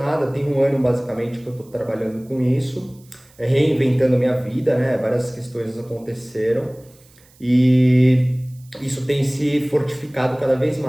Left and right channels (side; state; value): right; noise; hiss, 29 dB below the sound